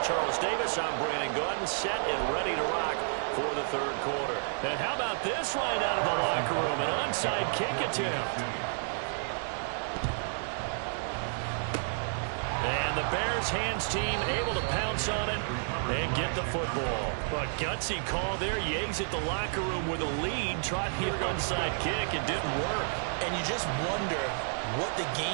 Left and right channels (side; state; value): left; silent; digital silence